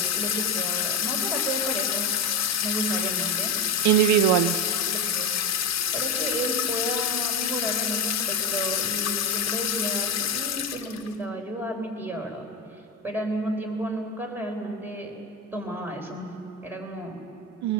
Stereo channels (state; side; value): normal; both; correlation 0.15